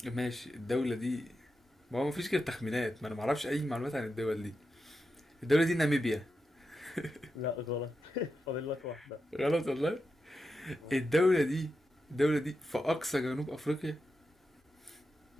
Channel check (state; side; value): normal; both; correlation 0.88